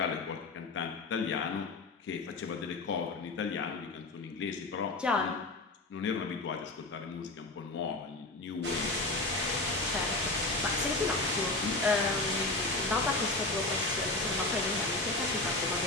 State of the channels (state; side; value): quieter; right; 3.1 dB